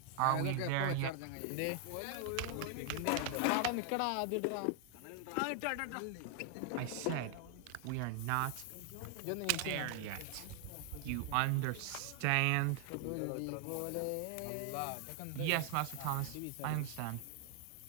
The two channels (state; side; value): different; both; correlation 0.00